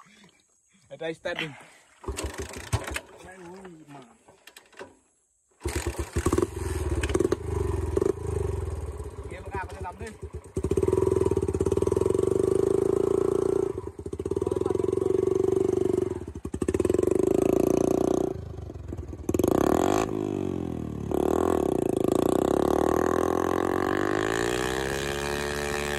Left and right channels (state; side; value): identical; both; correlation 1.00